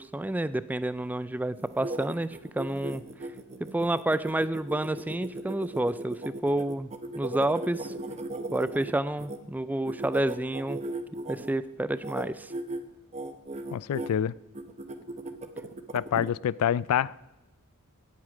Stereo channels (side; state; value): both; normal; correlation 0.61